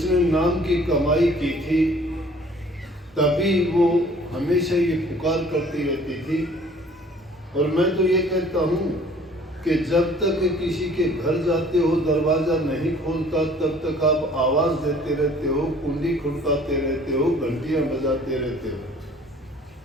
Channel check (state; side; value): normal; both; correlation 0.53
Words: नाम की कमाई की थी, तभी वो हमेशा ये पुकार करती रहती थी। और मैं तो ये कहता हूँ कि जब तक किसी के घर जाते हो दरवाज़ा नहीं खोलता तब तक आप आवाज़ देते रहते हो, कुंडी खड़काते रहते हो, घंटियाँ बजाते रहते हो,